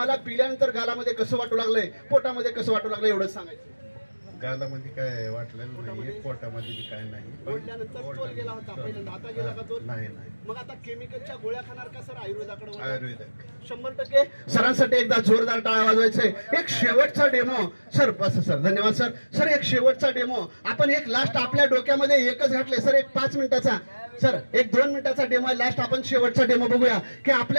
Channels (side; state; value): both; inverted; correlation -1.00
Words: पिल्यानंतर गालामध्ये कसं वाटू लागलंय, पोटामध्ये कसं वाटू लागलंय एवढंच सांगायचं. गालामध्ये काय वाटलेलं नाही, पोटामध्ये बी काय नाही. ओढल्यानंतर तोल गेला होता पहिल्यांदा, आता गेला का तोल? नाही नाही, मग आता केमिकलच्या गोळ्या खाणार का सर आयुर्वेदाकडे वळणार? आयुर्वेदिक. 100% सरांसाठी एकदा जोरदार टाळ्या वाजवायचे. एक शेवटचा डेमो सर, बस सर, धन्यवाद सर. सर एक शेवटचा डेमो आपण एक लास्ट आपल्या डोक्यामध्ये एकच घातले सर, एक 5 मिनिटाचा सर, एक 2 मिनिटाचा डेमो आहे लास्ट. आपण शेवटचा डेमो बघूया की